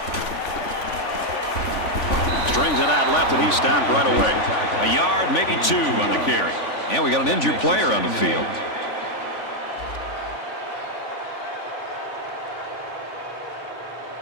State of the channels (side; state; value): right; late; 3.5 ms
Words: Strings it out left, and he stopped right away. A yard, maybe 2 on the carry. And we got an injured player on the field.